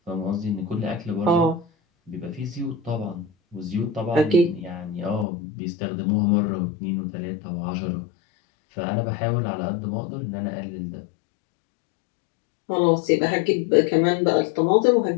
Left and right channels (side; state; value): right; drops out; at 5.2 s